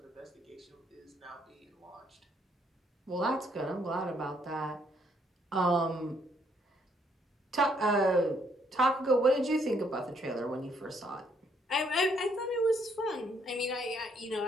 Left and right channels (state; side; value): normal; both; correlation 0.70